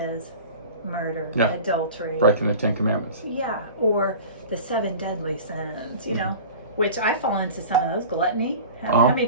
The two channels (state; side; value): inverted; both; correlation -0.38